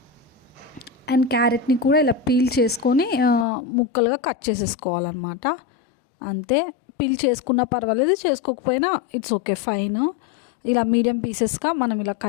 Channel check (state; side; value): drops out; right; at 3.5 s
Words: అండ్ క్యారెట్ని కూడా ఇలా పీల్ చేసుకొని ముక్కలుగా కట్ చేసేసుకోవాలన్నమాట. అంతే, పీల్ చేసుకున్నా పర్వాలేదు, చేసుకోకపోయినా ఇట్స్ ఓకే, ఫైన్. ఇలా మీడియం పీసెస్గా మనం ఇలా